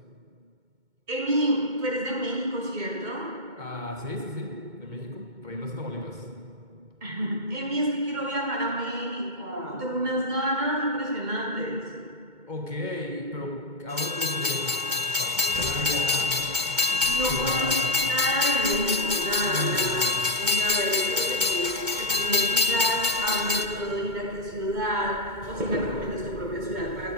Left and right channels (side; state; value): left; late; 2.2 ms